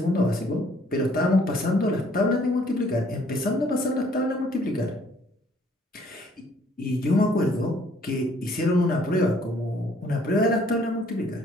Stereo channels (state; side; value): normal; both; correlation 0.62